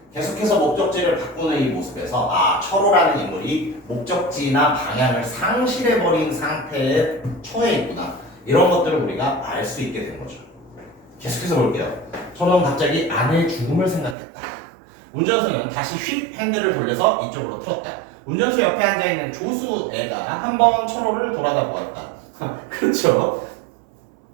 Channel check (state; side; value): drops out; left; at 14.2 s